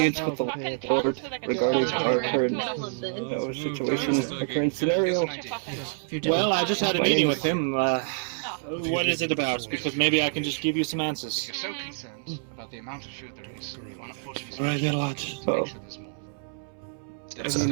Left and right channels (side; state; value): left; silent; 60 dB below the other